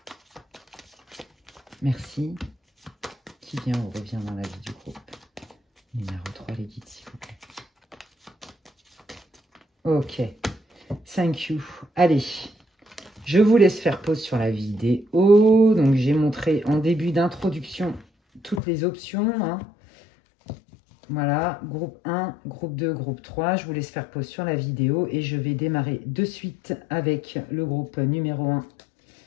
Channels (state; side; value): drops out; right; at 18.6 s